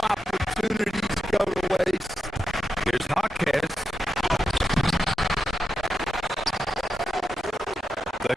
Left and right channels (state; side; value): normal; both; correlation 0.89